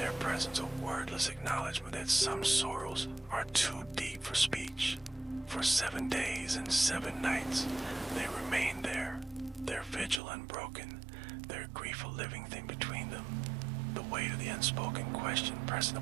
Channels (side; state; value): left; drops out; at 10.2 s